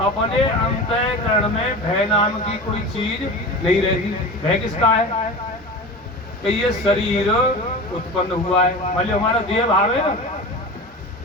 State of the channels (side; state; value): both; normal; correlation 0.31